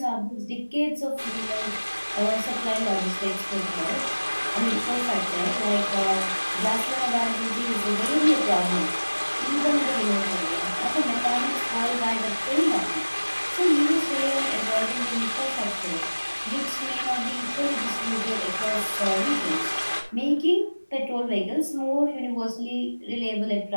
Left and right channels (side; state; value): both; inverted; correlation -1.00